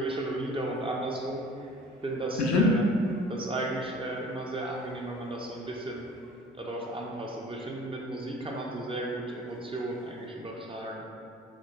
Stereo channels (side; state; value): both; normal; correlation 0.47